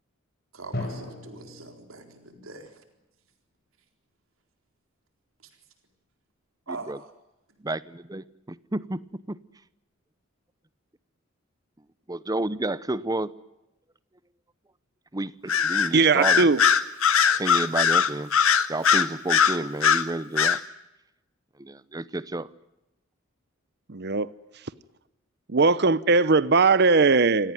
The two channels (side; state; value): both; normal; correlation 0.16